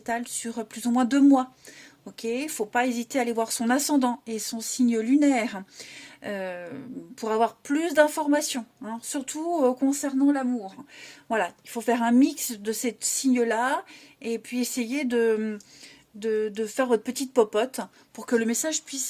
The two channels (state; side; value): identical; both; correlation 1.00